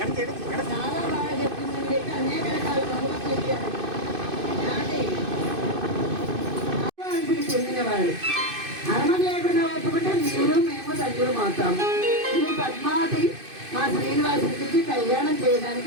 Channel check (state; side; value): late; left; 2.5 ms